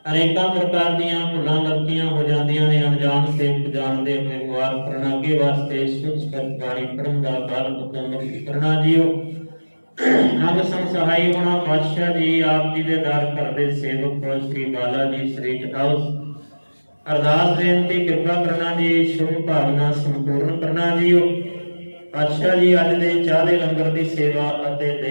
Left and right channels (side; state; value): both; inverted; correlation -1.00